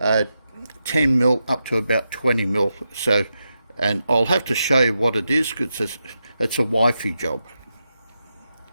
up to about 20mm. So, and I'll have to show you what it is, because it's a wifey job.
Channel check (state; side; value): inverted; both; correlation -0.87